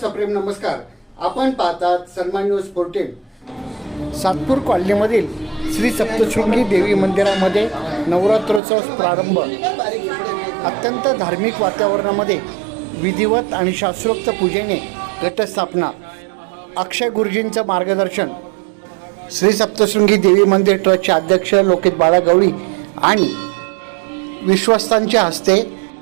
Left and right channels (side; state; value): left; drops out; at 8.6 s